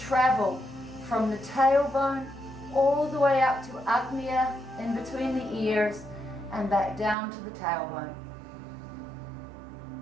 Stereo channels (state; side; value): drops out; left; at 7.2 s